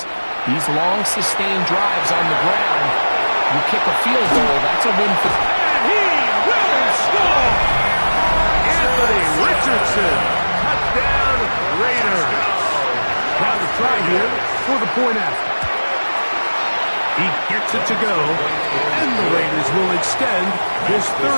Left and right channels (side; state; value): both; inverted; correlation -1.00